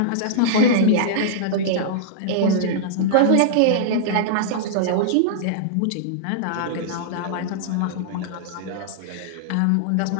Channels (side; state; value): both; different; correlation -0.02